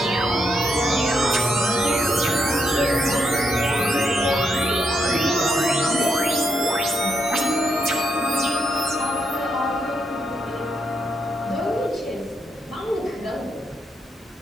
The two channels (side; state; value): both; normal; correlation 0.79